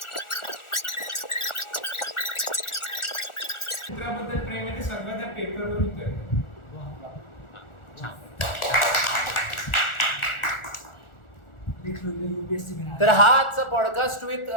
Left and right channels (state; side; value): late; right; 1.4 ms